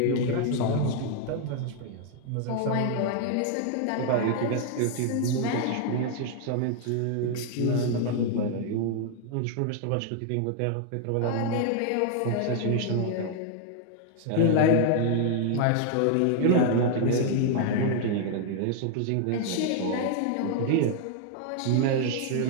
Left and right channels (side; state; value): both; different; correlation 0.00